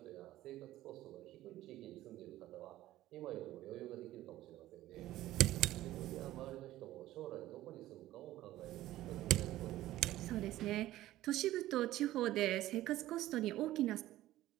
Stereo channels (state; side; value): quieter; left; 15.1 dB